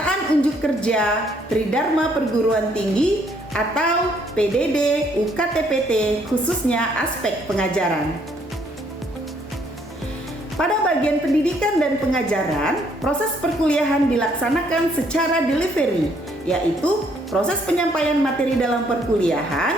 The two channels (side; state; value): both; normal; correlation 0.67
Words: unjuk kerja Tridharma Perguruan Tinggi atau PDD UKTPT, khususnya aspek pengajaran. Pada bagian pendidikan dan pengajaran, proses perkuliahan dilaksanakan secara delivery, yaitu proses penyampaian materi dalam